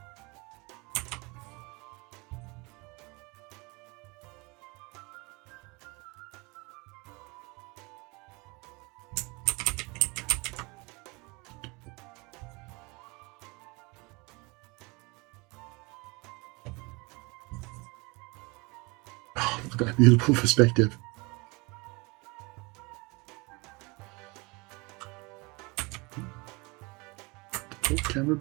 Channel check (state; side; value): quieter; left; 26.8 dB